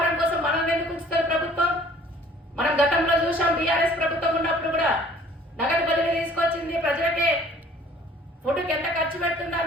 కోసం మనల్ని ఎందుకు ఉంచుతారు ప్రభుత్వం? మనం గతంలో చూసాం, బీఆర్ఎస్ ప్రభుత్వం ఉన్నప్పుడు కూడా నగదు బదిలీ తీసుకొచ్చింది. ప్రజలకే ఫుడ్కి ఎంత ఖర్చు పెడుతుందో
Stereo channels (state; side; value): normal; both; correlation 0.54